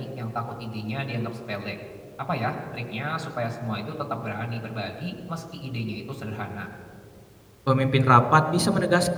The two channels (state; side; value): identical; both; correlation 1.00